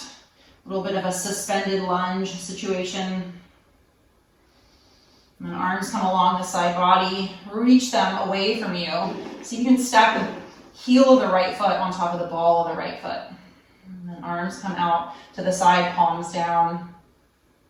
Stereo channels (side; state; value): both; identical; correlation 1.00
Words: little bit of a suspended lunge situation. And then arms come along the side body. Reach them away from you. So you can stack the heel of the right foot on top of the ball of the right foot. And then arms come out to the side, palms down.